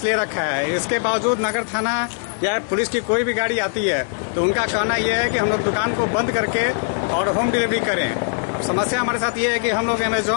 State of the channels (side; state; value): right; silent; 65 dB below the other